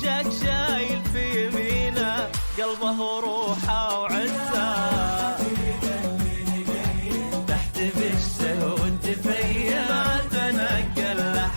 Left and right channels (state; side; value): inverted; both; correlation -1.00